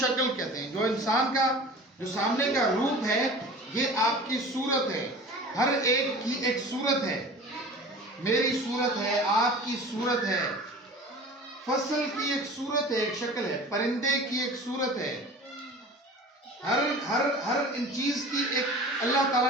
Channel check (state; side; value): normal; both; correlation 0.40